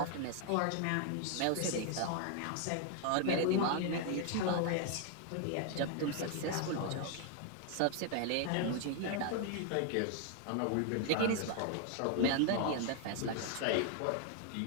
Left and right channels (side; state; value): both; different; correlation 0.00